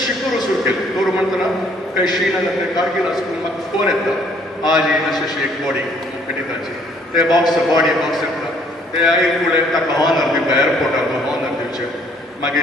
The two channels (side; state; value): both; normal; correlation 0.62